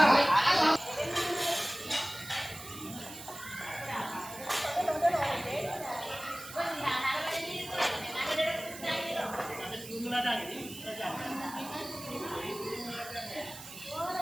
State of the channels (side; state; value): right; noise; hiss, 13 dB below the sound